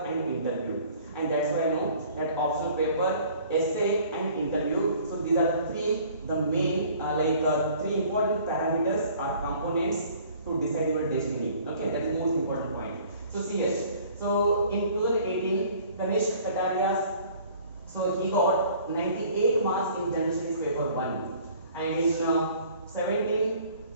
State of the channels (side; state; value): both; inverted; correlation -0.53